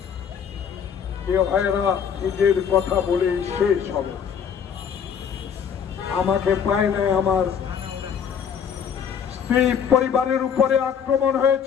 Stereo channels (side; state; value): right; quieter; 7.5 dB